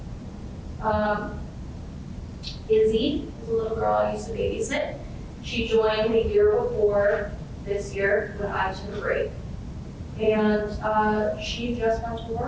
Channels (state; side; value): identical; both; correlation 1.00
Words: Izzy is a little girl I used to babysit. She joined the year before this year when I took a break. And she just went to